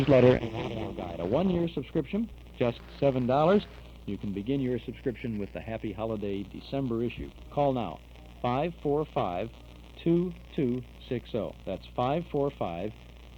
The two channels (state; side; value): identical; both; correlation 1.00